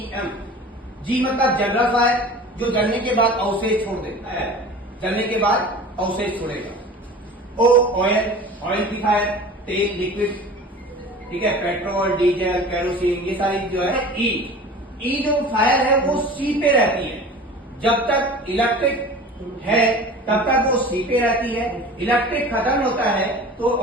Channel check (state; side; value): normal; both; correlation 0.39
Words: जी मतलब जनरल फायर, जो जलने के बाद अवशेष छोड़ देता है, जलने के बाद अवशेष छोड़ेगा। ओ ऑयल, ऑयल की फायर, तेल लिक्विड, ठीक है, पेट्रोल डीजल केरोसिन, ये सारी जो है। ई जो फायर है वो सी पे रहती है, जब तक इलेक्ट्रिक है तब तक वो सी पे रहती है, इलेक्ट्रिक खत्म होता है तो